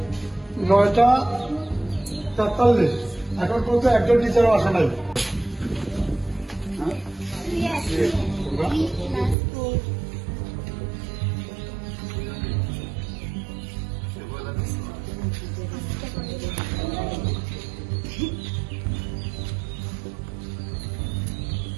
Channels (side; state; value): left; drops out; at 9.3 s